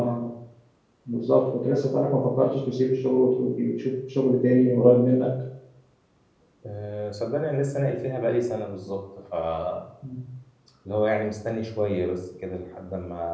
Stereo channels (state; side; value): identical; both; correlation 1.00